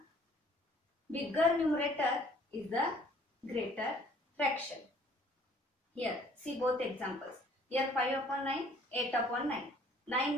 bigger numerator is the greater fraction. Here see both examples. Here 5 upon 9, 8 upon 9.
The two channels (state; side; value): normal; both; correlation 0.57